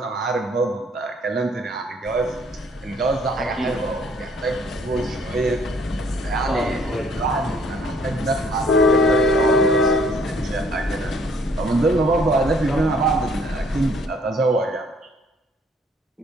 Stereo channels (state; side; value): normal; both; correlation 0.61